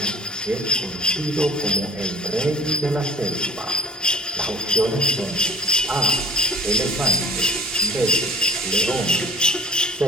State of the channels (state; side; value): normal; both; correlation 0.45